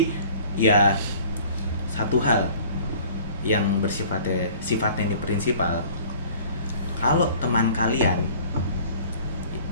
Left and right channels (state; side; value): inverted; both; correlation -0.49